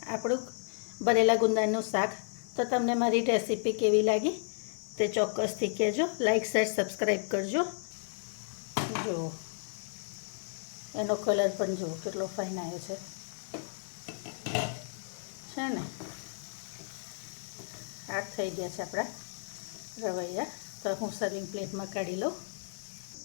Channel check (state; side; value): silent; right; 56 dB below the other